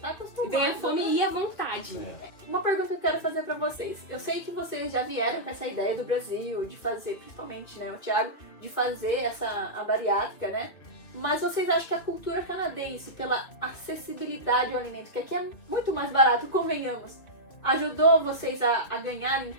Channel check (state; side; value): late; right; 2.2 ms